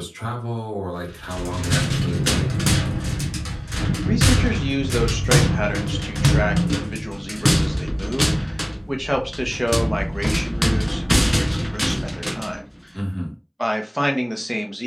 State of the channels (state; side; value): identical; both; correlation 1.00